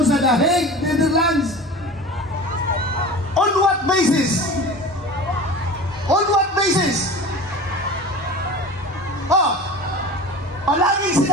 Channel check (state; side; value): normal; both; correlation 0.36